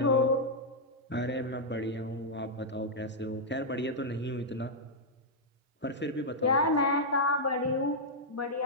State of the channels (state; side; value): normal; both; correlation -0.07